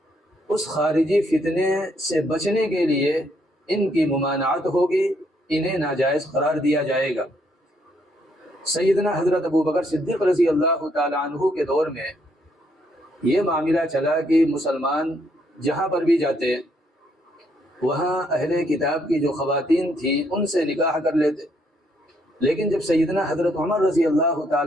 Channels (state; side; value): normal; both; correlation 0.72